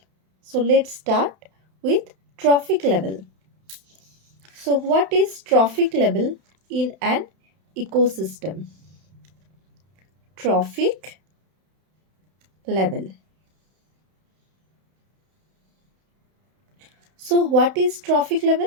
So let's start with trophic level. So what is trophic level in an ecosystem? Trophic level. So what is trophic level?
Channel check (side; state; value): left; late; 31 ms